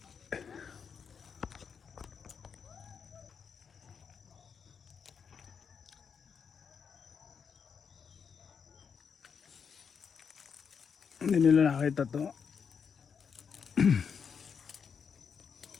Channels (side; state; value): right; quieter; 6.5 dB